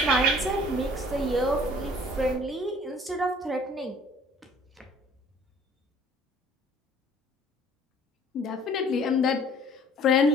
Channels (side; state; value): both; normal; correlation 0.53